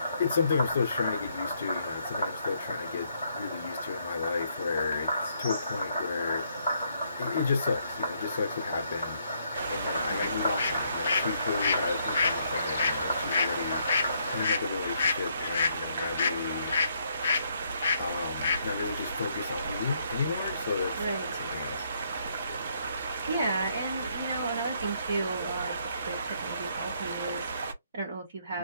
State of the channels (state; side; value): inverted; both; correlation -0.72